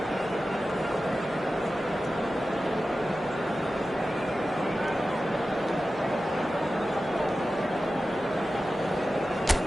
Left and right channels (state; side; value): normal; both; correlation 0.94